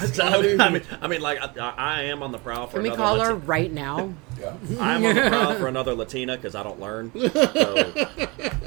mean, like, I am on the prowl for Can we another call her right now? Yeah. I'm on the prowl for another Latina because I don't learn. So,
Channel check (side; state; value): left; quieter; 26.7 dB